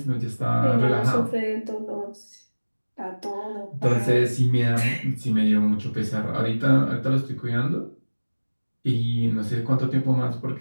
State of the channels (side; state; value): both; inverted; correlation -1.00